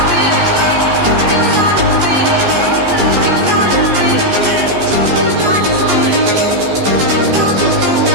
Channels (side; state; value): left; late; 14 ms